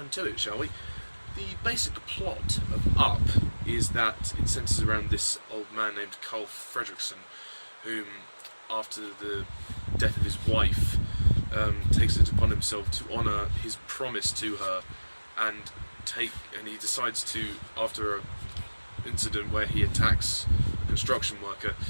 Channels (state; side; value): inverted; both; correlation -1.00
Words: to it, shall we? The basic plot of Up is that it centres around this old man named Carl Fredrickson, whom, after the death of his wife, takes it upon himself to honour his promise to her, and he decides to, after an incident where he attacks a construction worker,